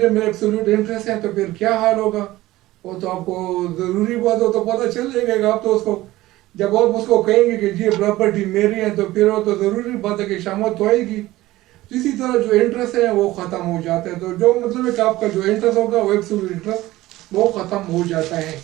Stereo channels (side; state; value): left; quieter; 17.1 dB